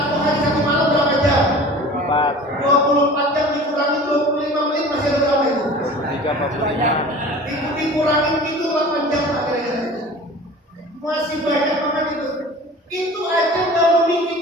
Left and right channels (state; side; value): normal; both; correlation 0.41